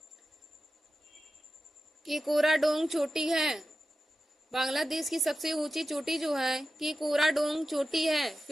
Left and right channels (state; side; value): normal; both; correlation 0.92